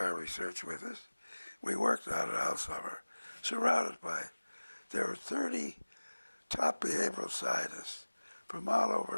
research with us. We worked on it all summer, surrounded by, there were 30 top behavioral scientists from all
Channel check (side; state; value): both; inverted; correlation -1.00